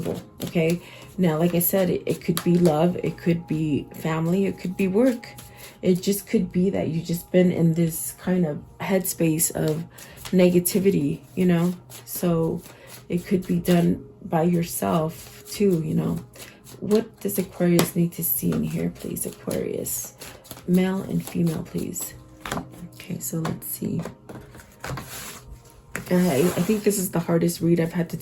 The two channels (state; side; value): identical; both; correlation 1.00